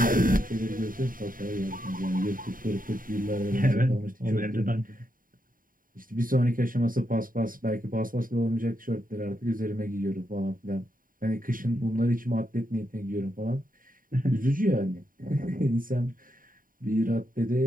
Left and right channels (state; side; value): late; left; 0.41 ms